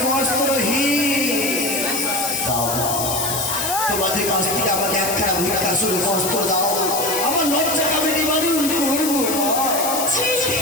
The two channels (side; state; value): left; noise; hiss, 3 dB below the sound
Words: বস্ত্রহীন। তোমাদের কাছ থেকে আমাকে একখানা ভিক্ষা শুরু বস্ত্র দাও, আমার লজ্জা আমি নিবারণ করবো।